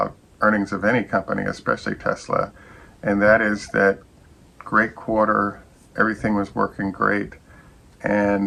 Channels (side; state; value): both; identical; correlation 1.00